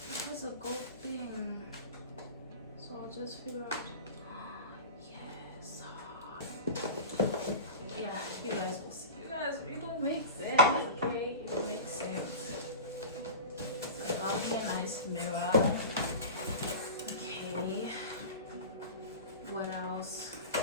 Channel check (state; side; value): inverted; both; correlation -0.31